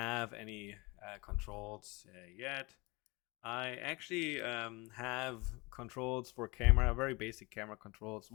any controls yet. I actually have controls for camera, very basic camera controls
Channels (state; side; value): quieter; right; 25.5 dB